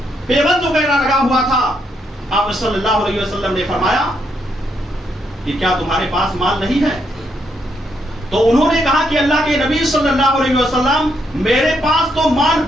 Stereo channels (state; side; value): normal; both; correlation 0.77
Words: پیبند وغیرہ لگا ہوا تھا. آپ صلی اللہ علیہ وسلم نے فرمایا کہ کیا تمہارے پاس مال نہیں ہے؟ تو انہوں نے کہا کہ اللہ کے نبی صلی اللہ علیہ وسلم, میرے پاس تو مال